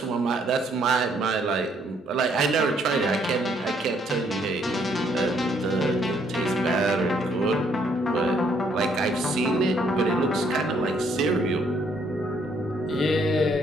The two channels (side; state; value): both; normal; correlation 0.68